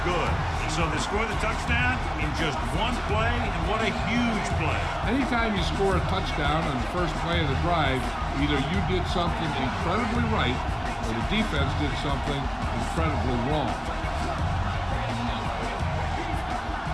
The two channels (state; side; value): identical; both; correlation 1.00